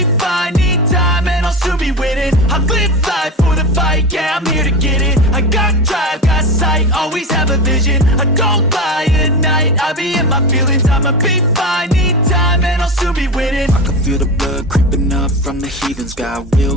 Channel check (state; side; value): normal; both; correlation 0.23